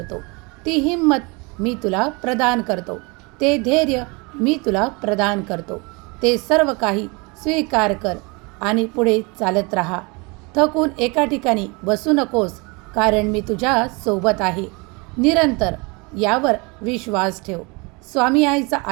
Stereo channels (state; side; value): quieter; left; 28.2 dB